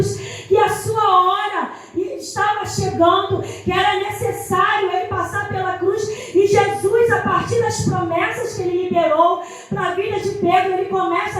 que a sua hora estava chegando, que era necessário ele passar pela cruz. E Jesus, a partir das promessas que ele liberou para a vida de Pedro, ele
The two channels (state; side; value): identical; both; correlation 1.00